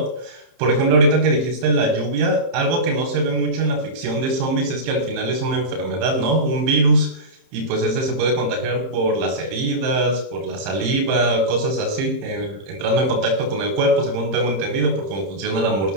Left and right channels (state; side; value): late; left; 30 ms